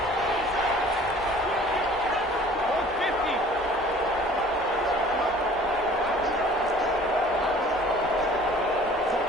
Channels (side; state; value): both; normal; correlation 0.50